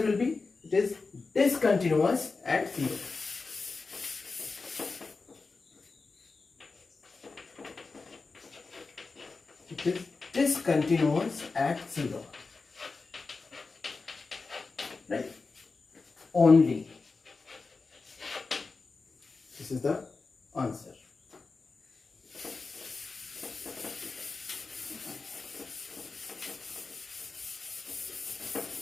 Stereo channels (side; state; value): right; quieter; 4.1 dB